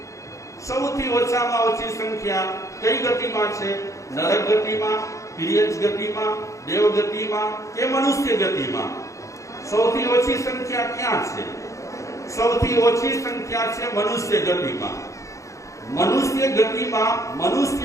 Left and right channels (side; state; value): right; late; 0.15 ms